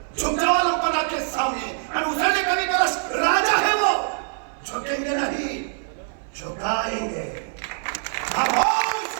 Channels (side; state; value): left; silent; 56 dB below the other